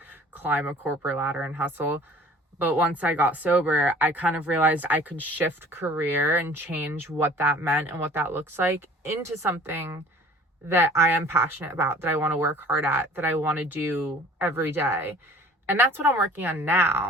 climb a corporate ladder and hustle. But once I got sober, I kind of realized I could shift career and change what that meant and what that looks like into something that I am passionate about, that I want to work hard at, that I want to do every day. And that's what I'm working on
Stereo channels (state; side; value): normal; both; correlation 0.49